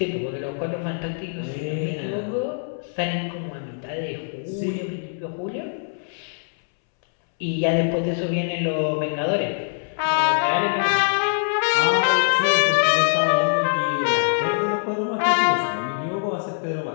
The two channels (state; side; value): silent; right; 63 dB below the other